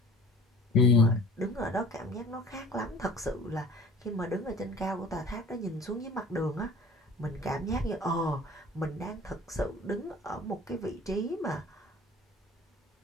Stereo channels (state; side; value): normal; both; correlation 0.46